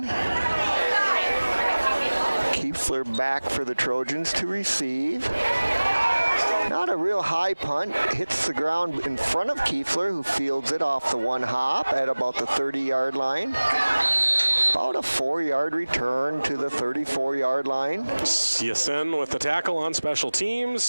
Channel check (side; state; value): both; inverted; correlation -1.00